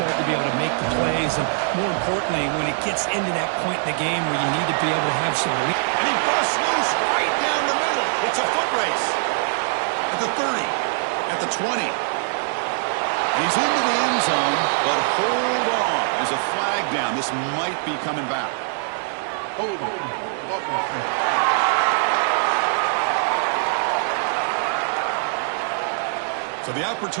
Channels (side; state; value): left; silent; digital silence